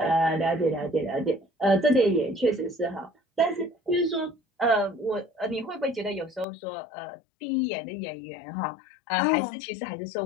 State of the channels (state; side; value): drops out; right; at 6.5 s